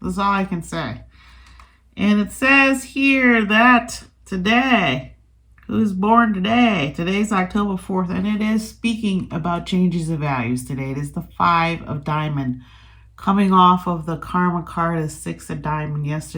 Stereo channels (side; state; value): both; identical; correlation 1.00